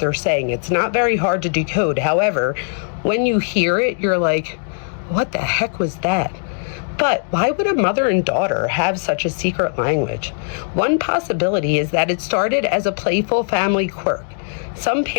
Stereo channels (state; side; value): silent; right; digital silence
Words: saying. It's not very hard to decode. However, when you hear it, you're like, what the heck was that? But why would a mother and daughter have such a secret language? One possibility is that it started as a playful family quirk. Some